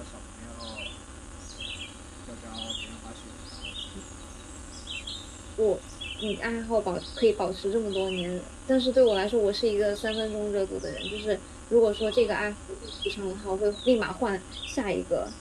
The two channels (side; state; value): both; identical; correlation 1.00